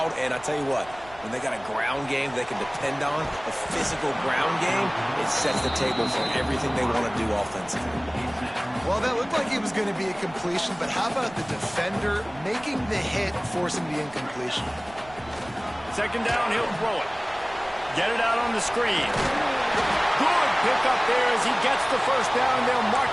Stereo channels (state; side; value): noise; right; rumble, 22 dB below the sound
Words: and I tell you what, when they got a ground game they can depend on, a physical ground game, it sets the table for everything they want to do offensively. Well, that looked like it was going to be a completion, but how about the defender making the hit, forcing the incompletion? Second down, he'll throw it. Get it out on the screen. Good pickup there as he gets the first down. They'll mark